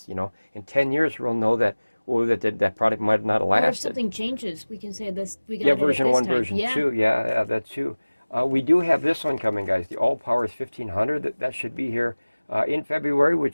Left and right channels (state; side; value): inverted; both; correlation -1.00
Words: You know, in 10 years we'll know that that product might not have lasted. Or if something changes, we can say this. We got yeah, it version this 1, time. version 2. Yeah, that's true. We do have this one coming, guys. The Allpowers 1500. That should be here in February,